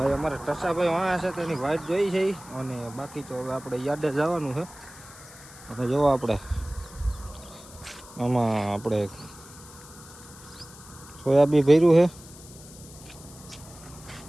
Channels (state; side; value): noise; left; hiss, 19 dB below the sound